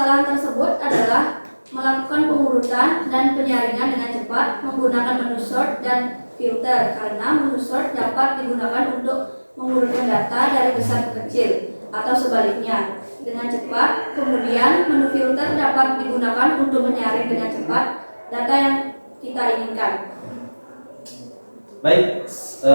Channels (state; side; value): inverted; both; correlation -1.00